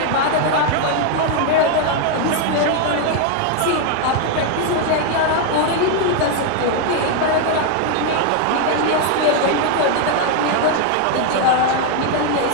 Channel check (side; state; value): both; different; correlation 0.00